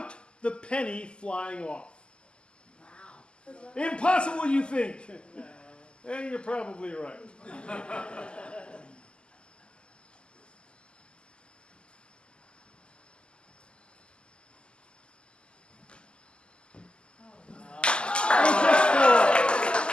the penny flying off. Wow. Impossible, you think? And you're probably right.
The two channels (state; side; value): late; right; 0.050 ms